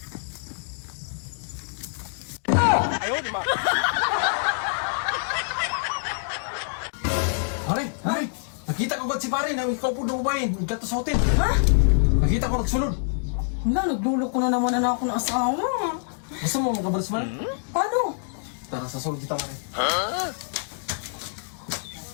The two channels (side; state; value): right; silent; digital silence